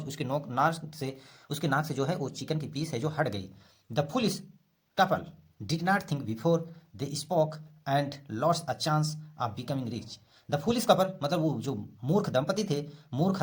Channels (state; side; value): identical; both; correlation 1.00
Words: उसके नाक से, उसके नाक से जो है वो चिकन की पीस है जो हट गई। The foolish couple did not think before they spoke and lost a chance of becoming rich. The foolish couple मतलब वो जो मूर्ख दंपति थे, मूर्ख